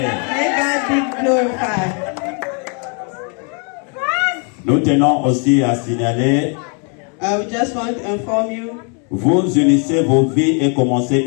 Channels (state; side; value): quieter; right; 39.0 dB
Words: May God be glorified. Nous tenons aussi à signaler, We just want to inform you, vous unissez vos vies et commencez